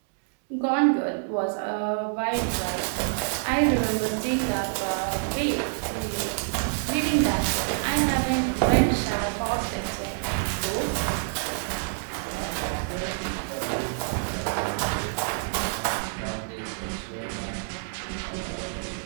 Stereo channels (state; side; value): silent; left; digital silence